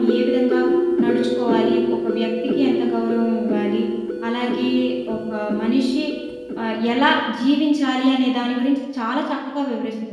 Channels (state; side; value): identical; both; correlation 1.00